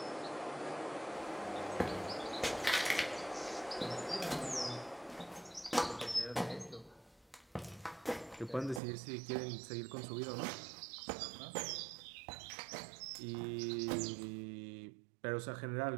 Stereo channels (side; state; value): left; drops out; at 8.8 s